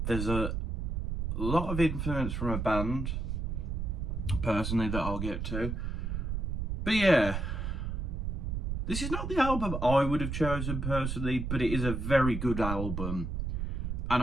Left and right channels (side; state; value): right; noise; rumble, 2 dB below the sound